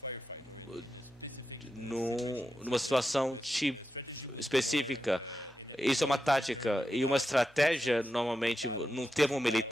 numa situação específica. Isso é uma tática. E uma estratégia, normalmente, num termo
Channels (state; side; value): normal; both; correlation 0.88